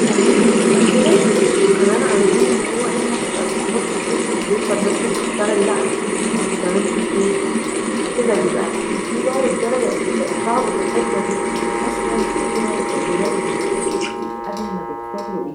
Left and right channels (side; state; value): both; identical; correlation 1.00